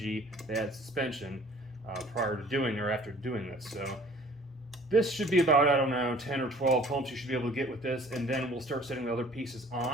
bad suspension prior to doing or after doing this. So this should be about, I don't know, 10 or 12 pumps you should be able to get with this, and then we'll start setting the other pieces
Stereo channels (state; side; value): normal; both; correlation 0.52